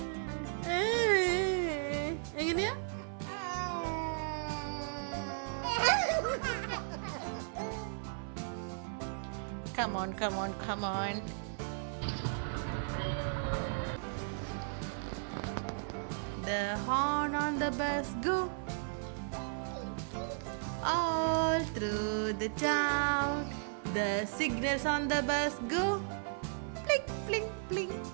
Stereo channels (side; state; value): left; silent; 54 dB below the other